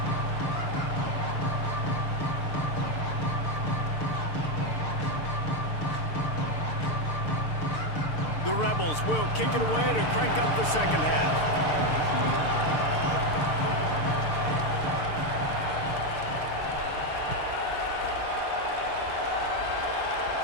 Rebels will kick it away to crank up the second half.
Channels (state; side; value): late; right; 6.7 ms